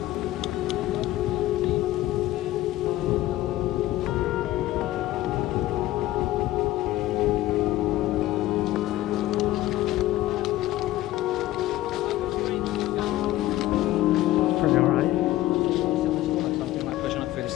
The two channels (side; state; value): right; quieter; 15.6 dB